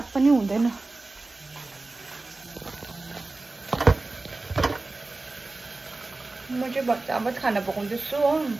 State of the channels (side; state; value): left; quieter; 3.2 dB